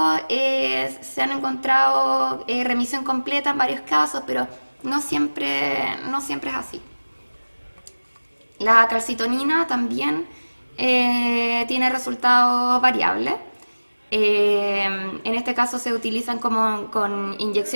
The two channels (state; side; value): inverted; both; correlation -1.00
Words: se han encontrado remisión completa en varios casos, pero no siempre es así. La calcitonina también tiene resultados variables. En este caso se utilizan con